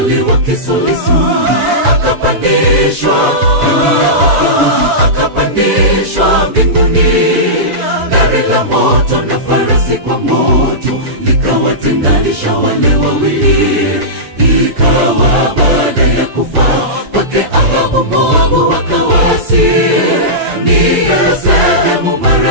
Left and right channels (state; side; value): late; left; 7.0 ms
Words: wa kisulisu akapandishwa mbinguni. Gari la moto na farasi kwa moto likawatenganisha wale wawili. Ikawa baada ya kufa kwake Ahabu, Moabu wakawasi. Ni sehemu